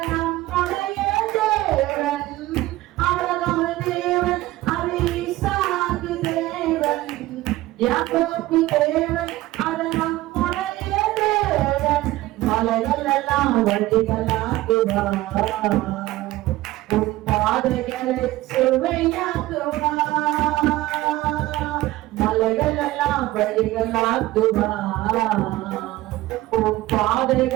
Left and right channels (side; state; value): left; quieter; 17.1 dB